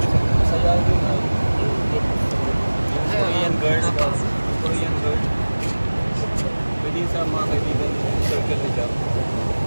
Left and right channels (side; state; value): both; inverted; correlation -1.00